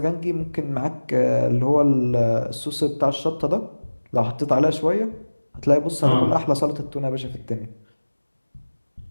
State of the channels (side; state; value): both; inverted; correlation -1.00